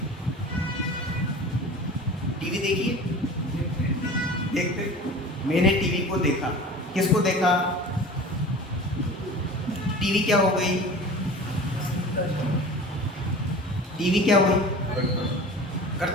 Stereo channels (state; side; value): normal; both; correlation 0.38